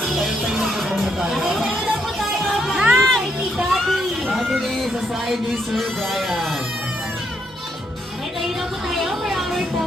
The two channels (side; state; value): both; normal; correlation 0.76